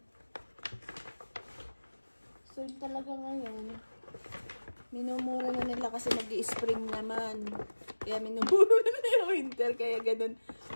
Sale talaga ngayon. Minumura na nila kasi mag-i-spring naman. Kaya minumura na yung winter. Kaya ganun.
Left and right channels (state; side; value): inverted; both; correlation -1.00